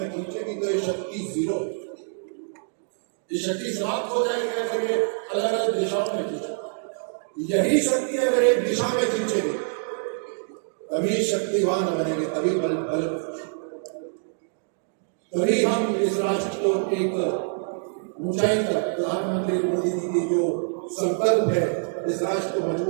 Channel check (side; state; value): left; silent; digital silence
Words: खींचेगी तो ये शक्ति जीरो, ये शक्ति समाप्त हो जाएगी अगर ये अलग अलग दिशाओं में खींचे। यही शक्ति अगर एक दिशा में खींचेगी तभी शक्तिवान बनेंगे, तभी बल तभी हम इस राष्ट्र को एक ऊंचाई तक, प्रधानमंत्री मोदी जी की जो संकल्प है इस राष्ट्र को